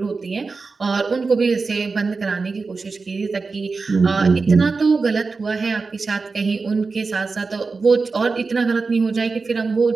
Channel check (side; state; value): left; quieter; 4.3 dB